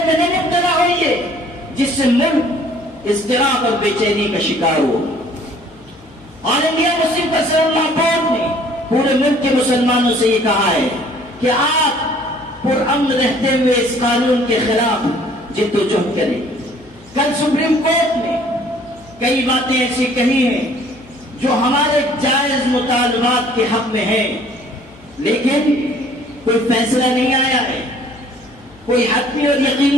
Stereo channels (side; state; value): left; noise; hum, 27 dB below the sound